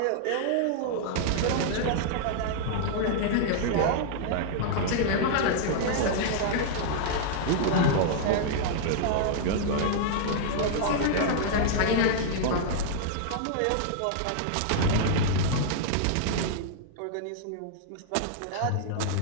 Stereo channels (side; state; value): both; different; correlation -0.01